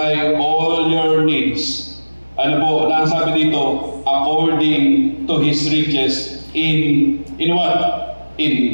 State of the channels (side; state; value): both; inverted; correlation -1.00